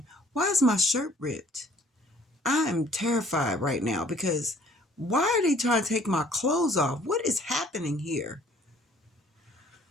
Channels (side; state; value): both; normal; correlation 0.57